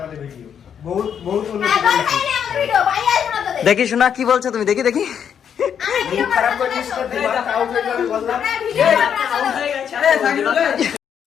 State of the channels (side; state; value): right; quieter; 8.2 dB